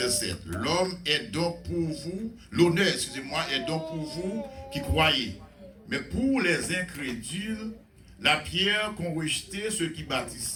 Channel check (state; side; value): identical; both; correlation 1.00